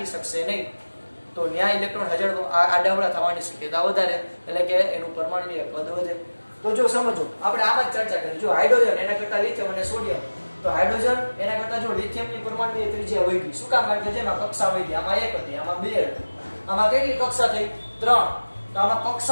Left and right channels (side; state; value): both; inverted; correlation -1.00